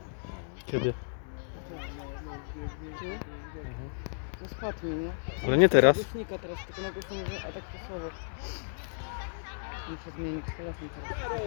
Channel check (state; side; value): silent; right; digital silence